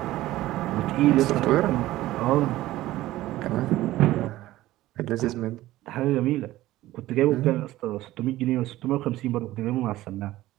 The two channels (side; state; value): left; quieter; 16.0 dB